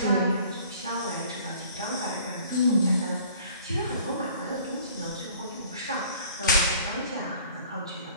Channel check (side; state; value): both; inverted; correlation -0.52